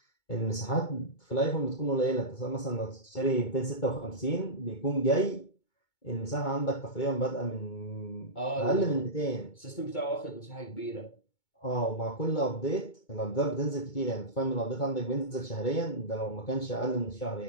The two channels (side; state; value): right; late; 2.2 ms